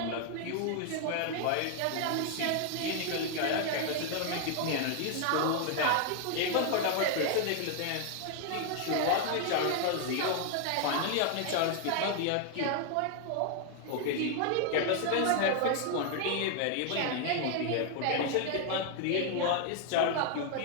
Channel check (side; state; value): both; different; correlation 0.00